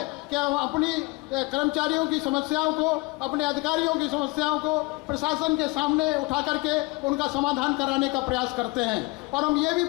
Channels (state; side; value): quieter; right; 24.4 dB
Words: कि हम अपनी कर्मचारियों की समस्याओं को, अपने अधिकारियों की समस्याओं को प्रशासन के सामने उठा करके उनका समाधान कराने का प्रयास करते हैं। और हम ये भी